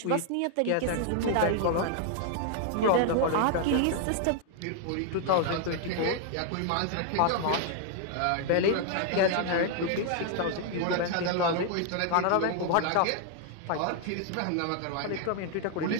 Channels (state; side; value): different; both; correlation 0.00